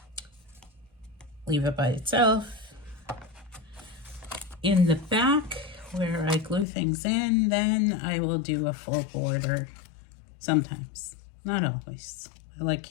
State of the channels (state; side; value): drops out; right; at 6.7 s